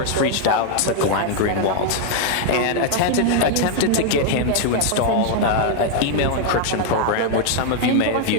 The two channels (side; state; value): both; different; correlation 0.00